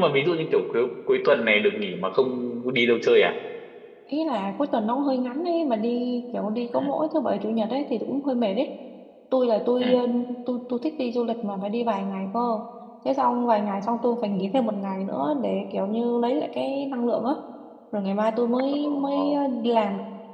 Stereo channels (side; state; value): both; identical; correlation 1.00